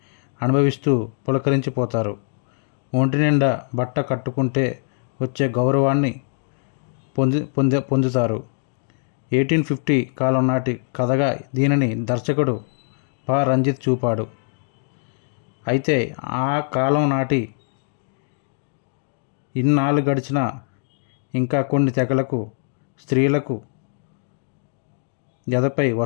అనుభవిస్తూ పులకరించిపోతారు. ఒంటి నిండా బట్ట కట్టుకుంటే వచ్చే గౌరవాన్ని పొందుతారు. 1850 కాలం నాటి కథగా దీనిని దర్శకుడు పా. రంజిత్ చూపాడు. అయితే ఆ కాలం నాటి ఇన్నాళ్ళు గడిచినా ఇంకా కొన్ని తెగలకు స్త్రీలకు ఎదపై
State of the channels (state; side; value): silent; right; digital silence